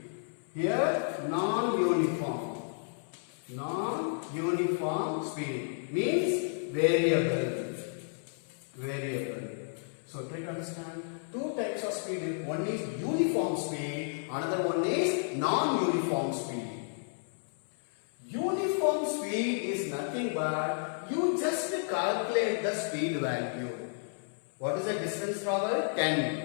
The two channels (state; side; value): silent; right; 56 dB below the other